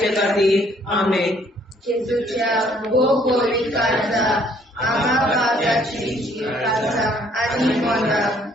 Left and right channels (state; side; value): normal; both; correlation 0.63